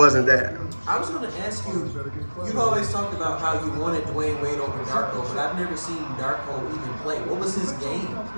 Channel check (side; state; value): both; inverted; correlation -1.00